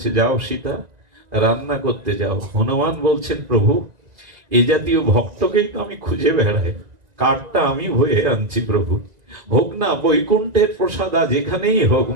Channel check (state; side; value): late; left; 1.9 ms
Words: যাও সীতা, রান্না করতে যাও। হনুমান বলছেন, প্রভু, এ জাতীয় ভক্তকেই তো আমি খুঁজে বেড়াই, কাঠটা আমি বয়ে আনছি, প্রভু, হোক না বৈকুণ্ঠের প্রসাদ, আজ এখানেই হোক,